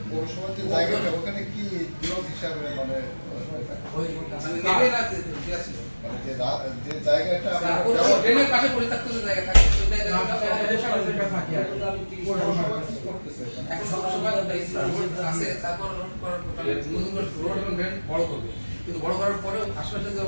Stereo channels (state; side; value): inverted; both; correlation -1.00